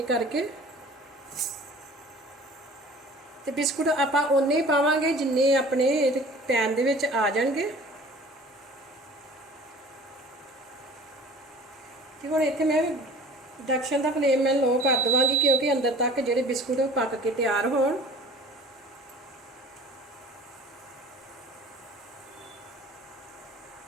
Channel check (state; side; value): normal; both; correlation 0.46